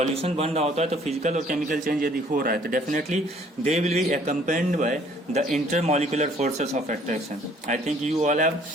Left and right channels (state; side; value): normal; both; correlation 0.59